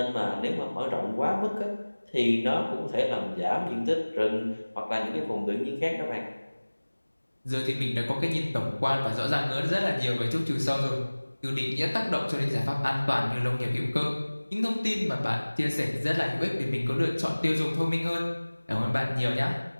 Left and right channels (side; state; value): both; inverted; correlation -1.00